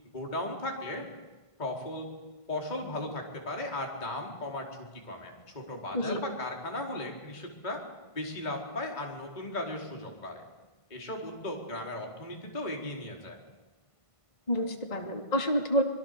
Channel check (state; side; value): late; right; 1.5 ms